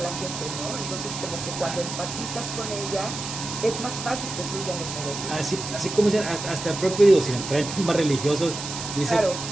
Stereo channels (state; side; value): noise; right; hiss, 7 dB below the sound